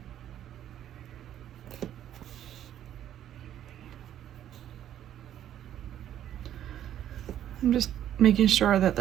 I'm just making sure that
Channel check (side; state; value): left; quieter; 11.0 dB